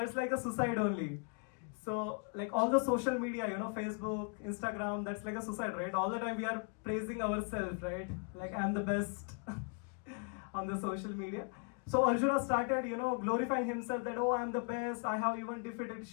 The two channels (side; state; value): right; quieter; 38.9 dB